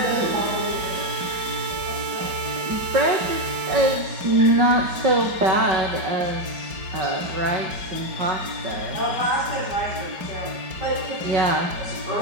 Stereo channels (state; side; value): late; left; 5.2 ms